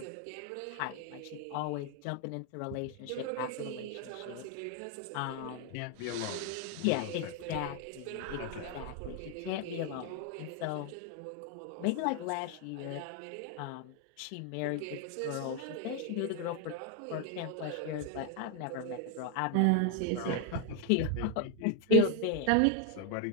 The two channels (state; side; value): different; both; correlation 0.00